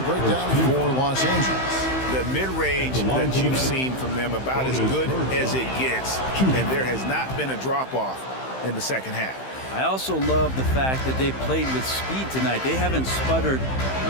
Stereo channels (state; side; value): late; right; 15 ms